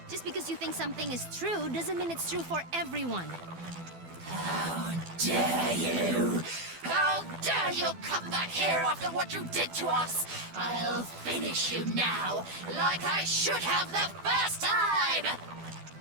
Just because you think something is true doesn't mean it's true for everyone. How dare you! How dare you come back here after what you did to us? I'll finish you now, like I should have the first time!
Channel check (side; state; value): left; late; 12 ms